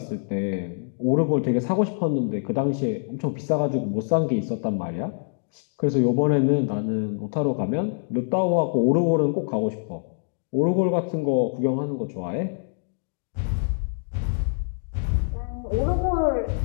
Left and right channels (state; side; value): silent; right; digital silence